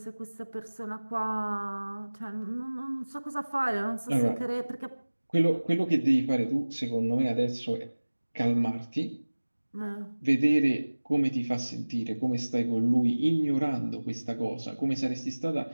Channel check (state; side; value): inverted; both; correlation -1.00